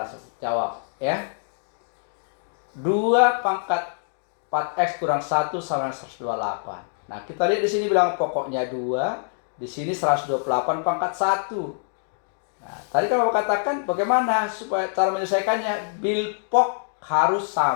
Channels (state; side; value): silent; right; digital silence